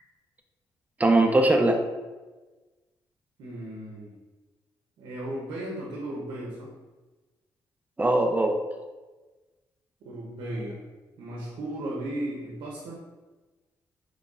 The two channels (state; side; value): normal; both; correlation 0.83